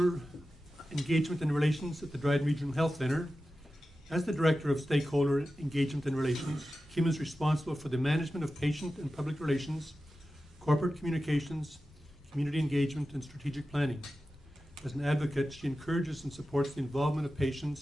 engagement and relations at the Dryden Regional Health Centre. As the director of stakeholder engagement and relations, Kim is responsible for the management of patient and public relations, corporate communications, community engagement, and strategic planning. As an advocate, she encourages and supports the involvement of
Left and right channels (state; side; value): normal; both; correlation 0.93